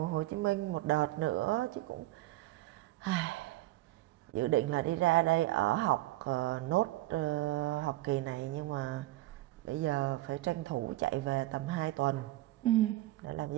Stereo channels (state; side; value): quieter; left; 17.4 dB